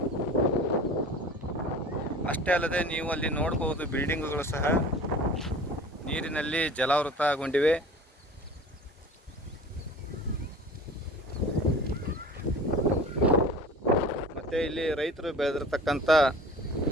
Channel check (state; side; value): normal; both; correlation 0.41